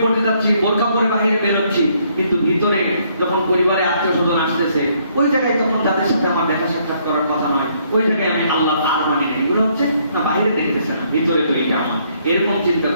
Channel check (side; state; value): both; inverted; correlation -0.68